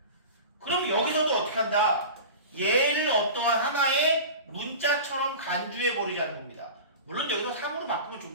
그럼 여기서도 어떻게 한다? 얘를 어떠한 하나의 문자처럼 간주해버리자는 겁니다. 물론 여기서 3으로 바꾸면 좀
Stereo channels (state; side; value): inverted; both; correlation -0.33